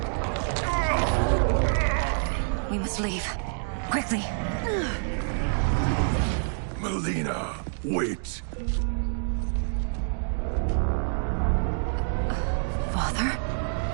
We must leave. Quickly. Melina, wait. Father?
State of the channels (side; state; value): left; silent; digital silence